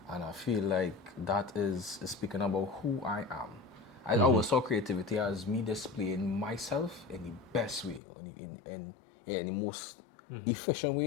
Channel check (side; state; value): right; drops out; at 8.0 s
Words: I feel like that is speaking about who I am. I always saw creativity as me displaying myself in the best way, in the most efficient